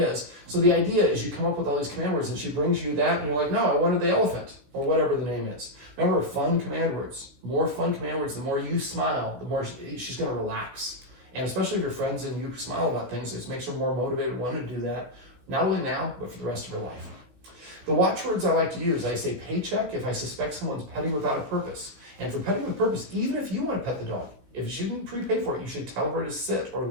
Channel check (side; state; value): left; late; 16 ms